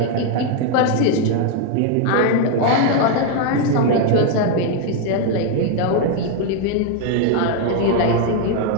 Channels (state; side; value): different; both; correlation 0.00